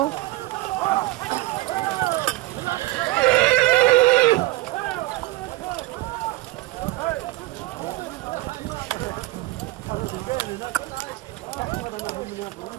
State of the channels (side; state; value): left; quieter; 19.2 dB